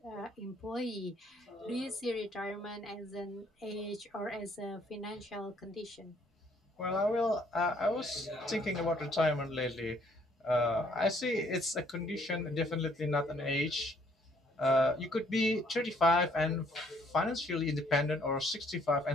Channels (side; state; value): both; normal; correlation 0.64